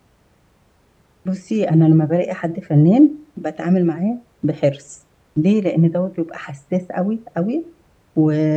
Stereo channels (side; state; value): both; identical; correlation 1.00